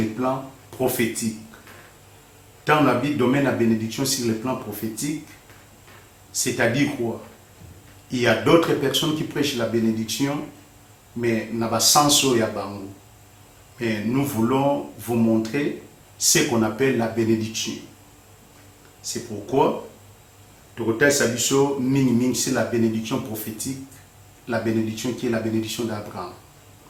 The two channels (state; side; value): identical; both; correlation 1.00